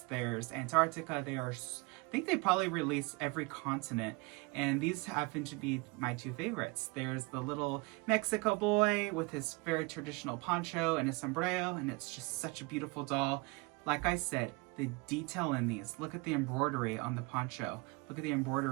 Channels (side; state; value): left; quieter; 27.1 dB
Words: there's Antarctica. I think they probably released every continent, and these happen to be my 2 favorites. There's the little Mexico boy with his very traditional poncho and his sombrero, and it's just such a beautiful doll. Like I said, the detail in these. Look at the embroidery on the poncho. Look at the